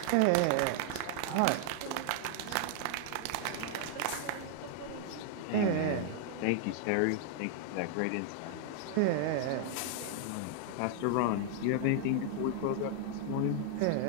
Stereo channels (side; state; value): both; different; correlation 0.00